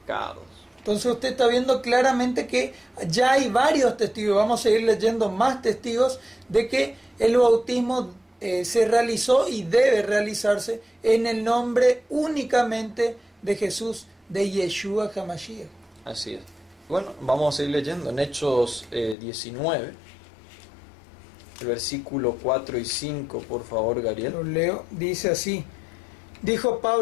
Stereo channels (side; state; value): right; drops out; at 19.2 s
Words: Entonces usted está viendo claramente que ya hay varios testigos, vamos a seguir leyendo más testigos de que el bautismo se realizó y debe realizarse en el nombre únicamente de Jesús, de Yeshua HaMashiach. Así es. Bueno, vamos a seguir leyendo en Hechos 19, el versículo 4 y 5, por favor, Gabriel. Lo leo, dice así, dijo